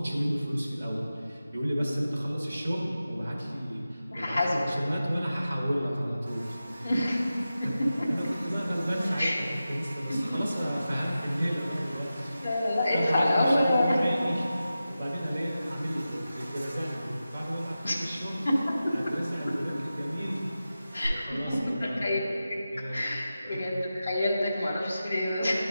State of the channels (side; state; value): both; inverted; correlation -0.93